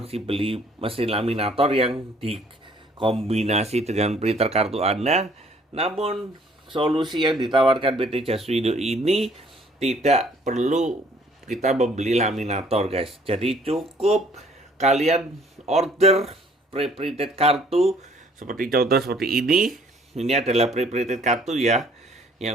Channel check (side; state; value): both; normal; correlation 0.60